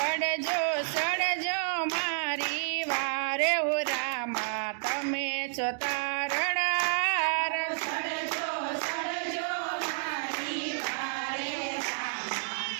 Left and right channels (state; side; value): silent; left; digital silence